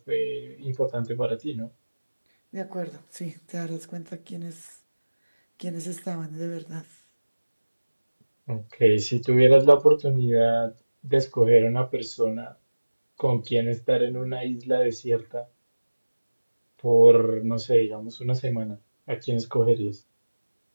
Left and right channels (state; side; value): inverted; both; correlation -1.00